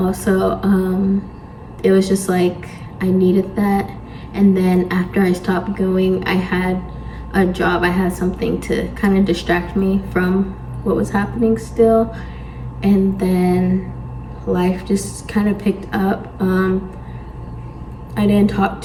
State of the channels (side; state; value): both; identical; correlation 1.00